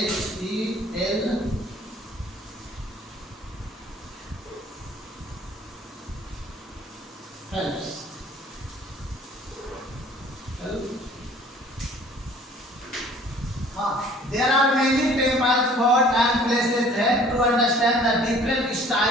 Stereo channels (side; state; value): both; normal; correlation 0.52